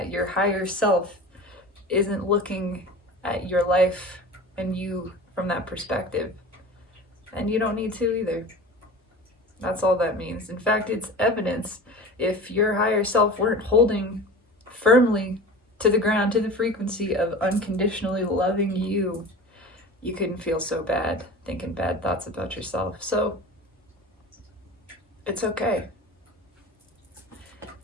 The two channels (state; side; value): normal; both; correlation 0.36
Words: Your higher self isn't looking at your life and you from that perspective. And you don't need to either. That's all that means. In fact, it's evidence. If your higher self weren't holding firmly to the ground, to the frequency of unconditionally loving you, you couldn't feel so bad thinking bad thoughts about yourself. So it's okay.